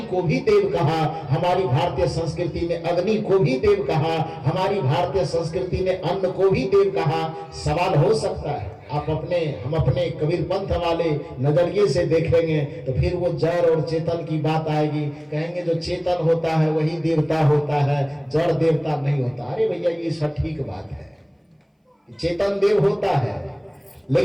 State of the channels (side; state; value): both; identical; correlation 1.00